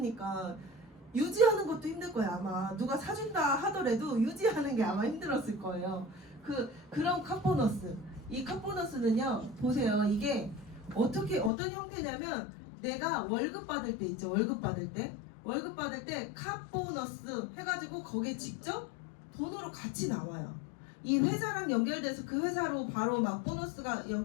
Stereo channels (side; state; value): right; drops out; at 11.5 s